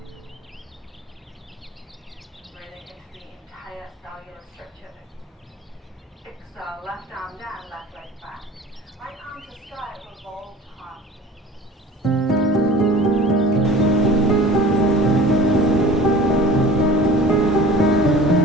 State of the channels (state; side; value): normal; both; correlation 0.42